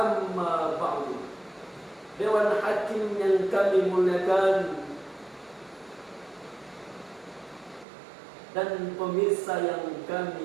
ba'du. Dewan Hakim yang kami muliakan dan pemirsa yang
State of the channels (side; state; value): left; drops out; at 7.9 s